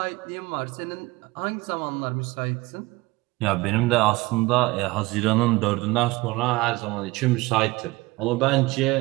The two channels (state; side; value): quieter; left; 21.6 dB